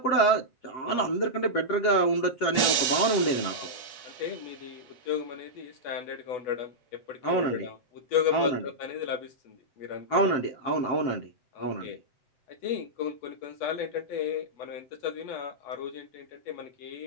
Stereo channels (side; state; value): right; late; 7.2 ms